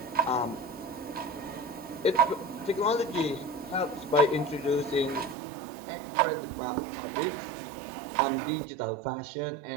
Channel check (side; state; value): left; drops out; at 5.4 s